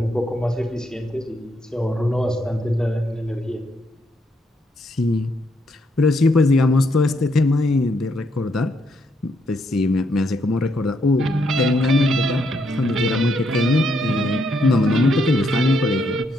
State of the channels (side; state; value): both; normal; correlation 0.75